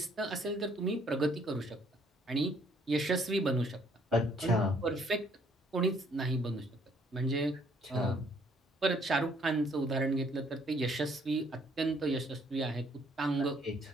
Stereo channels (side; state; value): both; normal; correlation 0.64